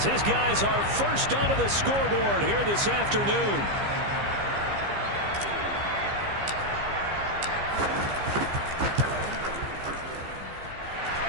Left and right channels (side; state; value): left; late; 15 ms